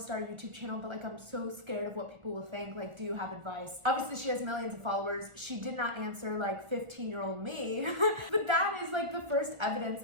start a YouTube channel, but like I'm so scared of what people will think. Like, do you have advice? Obviously she has millions of followers. She did not answer like 15-year-old me, but that is like the first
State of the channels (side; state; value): left; late; 1.4 ms